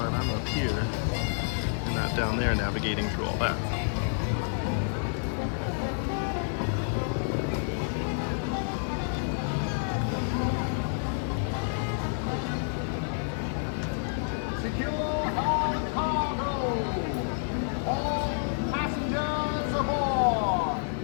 I'm up here and not down there navigating through all that. Secure all cargo. All passengers aboard.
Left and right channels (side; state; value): right; silent; digital silence